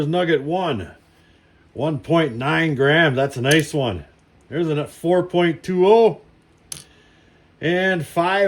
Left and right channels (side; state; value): both; identical; correlation 1.00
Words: nugget 1, 1.9 grams. That's a nice one. There's a 4.20 and